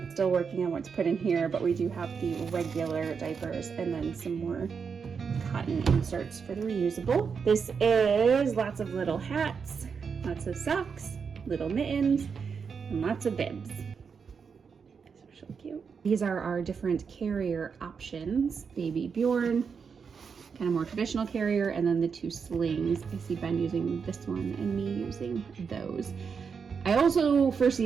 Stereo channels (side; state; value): left; quieter; 6.0 dB